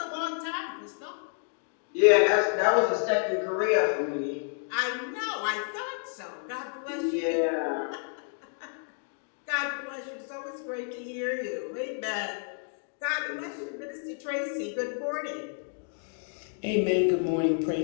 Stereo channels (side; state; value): right; silent; 58 dB below the other